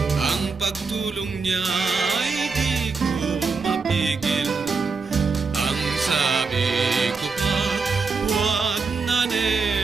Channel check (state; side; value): quieter; left; 4.6 dB